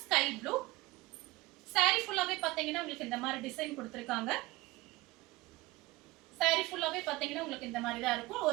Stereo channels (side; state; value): left; quieter; 20.8 dB